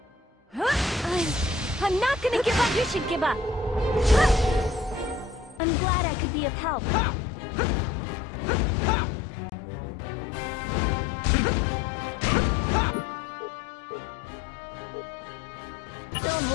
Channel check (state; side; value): drops out; right; at 5.6 s